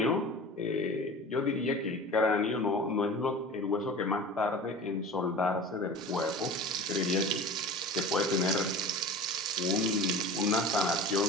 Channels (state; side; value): normal; both; correlation 0.37